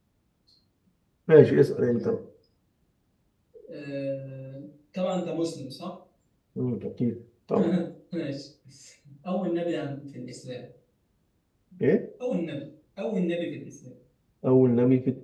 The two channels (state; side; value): identical; both; correlation 1.00